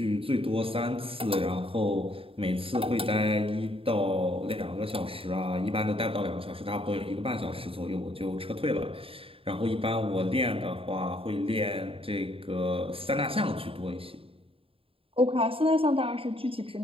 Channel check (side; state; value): left; late; 0.27 ms